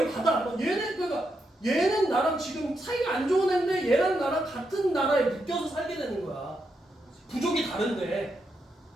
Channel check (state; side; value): normal; both; correlation 0.83